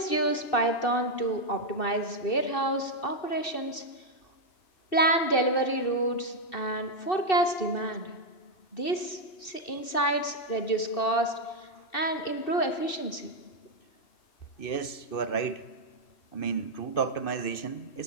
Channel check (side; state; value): right; late; 2.7 ms